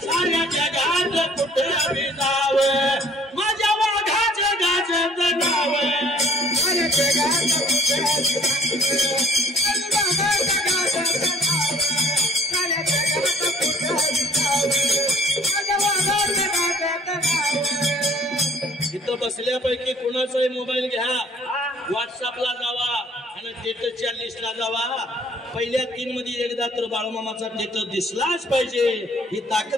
साऱ्या जगात कुठे बी जावे, माझ्या वाघाचं गाजत नाव. इथं बसल्यापैकी कुणाचाही मोबाईल घ्या, व्हॉट्सअपला जावा आणि स्टेटसच्या लिस्टला जावा. पहिल्या 3 मध्ये एकदा तर बाळूमामाचा स्टेटस दिसलाच पाहिजे. ही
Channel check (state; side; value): normal; both; correlation 0.55